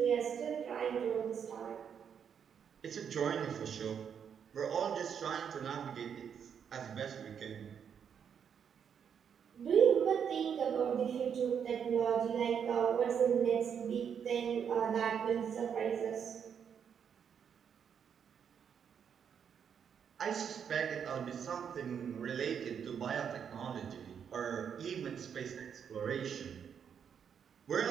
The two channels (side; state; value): left; quieter; 7.7 dB